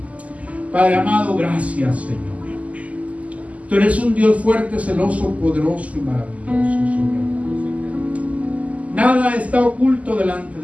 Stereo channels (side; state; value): left; late; 0.070 ms